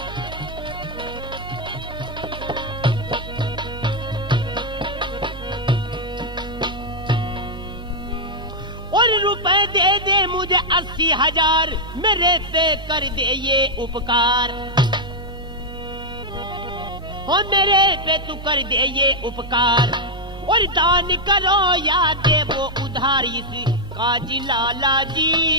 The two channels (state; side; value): noise; right; hum, 12 dB below the sound